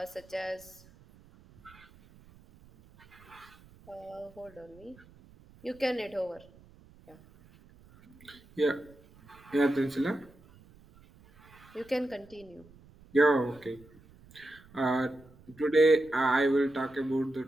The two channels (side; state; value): right; noise; rumble, 25 dB below the sound